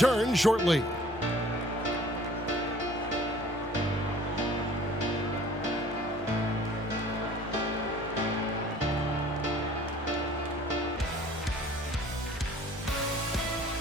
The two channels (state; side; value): normal; both; correlation 0.51